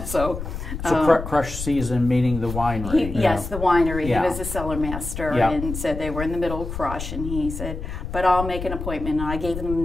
so. So crush season, meaning the winery. Yes, the winery. Yeah. He was a cellar master, Yeah. and said they were in the middle of crush, and he said, but I'll make an appointment. And I gave him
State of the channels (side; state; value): left; noise; rumble, 7 dB below the sound